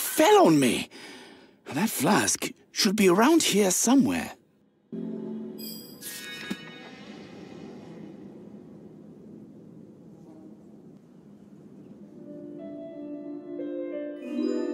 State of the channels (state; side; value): identical; both; correlation 1.00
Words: on me. That flask should be around here somewhere.